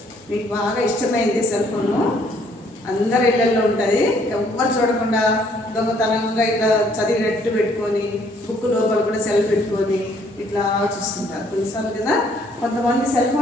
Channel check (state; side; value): normal; both; correlation 0.64